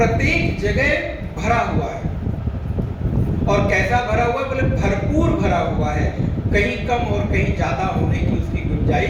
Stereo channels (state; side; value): identical; both; correlation 1.00